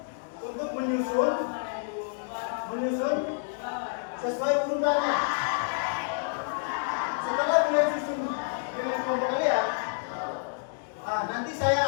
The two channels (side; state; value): right; silent; digital silence